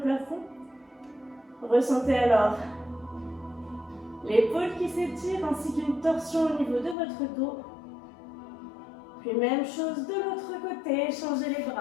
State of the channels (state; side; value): drops out; right; at 7.0 s